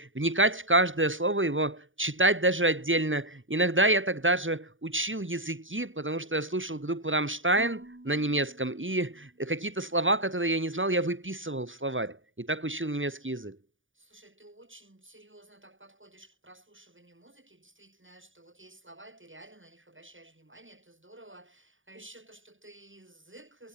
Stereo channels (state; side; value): late; left; 0.57 ms